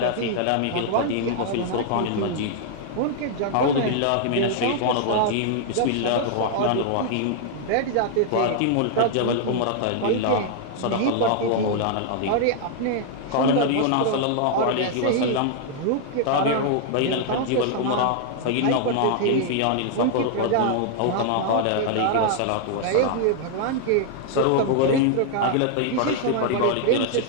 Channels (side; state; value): both; different; correlation 0.00